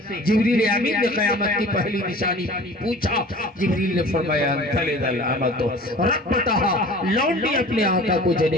جبریل امین نے قیامت کی پہلی نشانی پوچھا. جبریل نے فرمایا تلد الامۃ ربتہا, لونڈی اپنے آقا کو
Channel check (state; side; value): normal; both; correlation 0.43